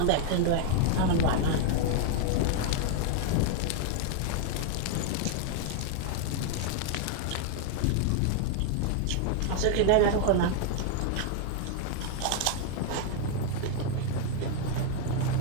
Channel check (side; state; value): both; different; correlation 0.00